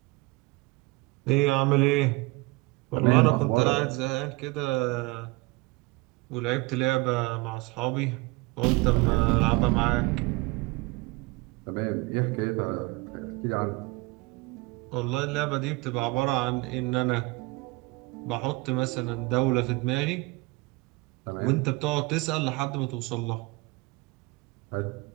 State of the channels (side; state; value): left; quieter; 24.3 dB